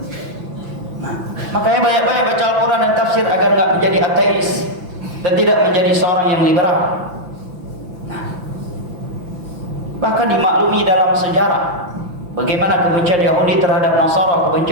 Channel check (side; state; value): left; late; 5.9 ms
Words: Nah, makanya banyak-banyak baca Al-Quran dan tafsir agar nggak menjadi ateis dan tidak menjadi seorang yang liberal. Nah, bahkan dimaklumi dalam sejarah bagaimana kebencian Yahudi terhadap Nasara,